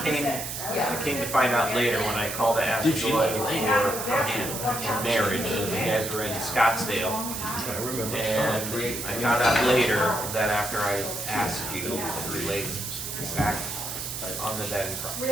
came to find out later when I called to ask Joy for marriage. You guys were in Scottsdale. And I found out later that after I asked you to relate back on the bed in front.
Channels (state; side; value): noise; right; hiss, 6 dB below the sound